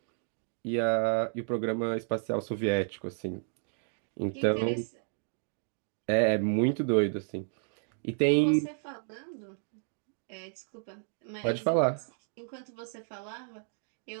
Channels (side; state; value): left; silent; digital silence